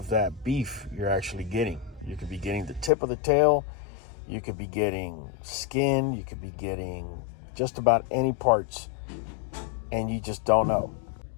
that beef you're actually getting. You could be getting the tip of the tail, you could be getting skin, you could be getting just about any parts, and you just don't know.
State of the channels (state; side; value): drops out; right; at 2.9 s